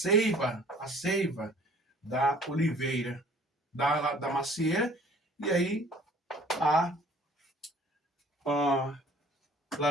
da oliveira, da macieira, e aí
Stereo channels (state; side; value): normal; both; correlation 0.52